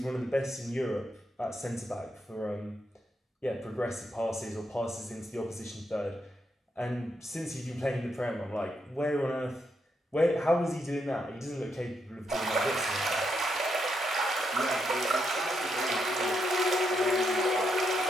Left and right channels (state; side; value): normal; both; correlation 0.80